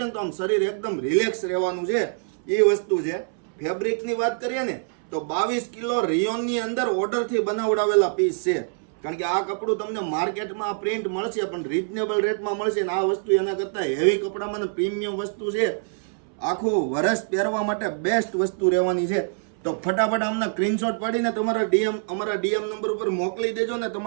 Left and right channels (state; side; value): silent; left; 61 dB below the other